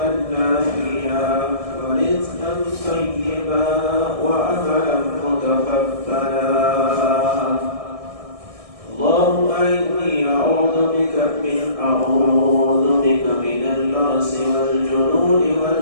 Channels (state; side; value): late; left; 1.6 ms